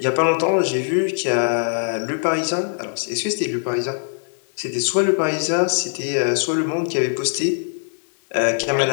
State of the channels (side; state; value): right; silent; digital silence